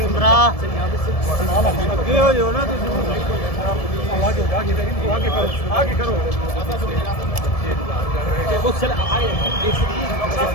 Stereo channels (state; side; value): late; right; 1.7 ms